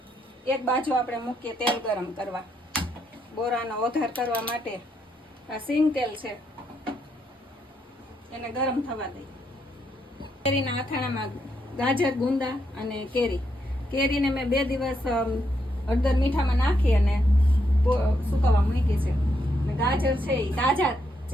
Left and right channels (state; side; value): normal; both; correlation 0.78